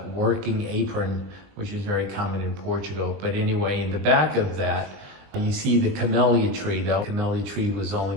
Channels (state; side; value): late; left; 20 ms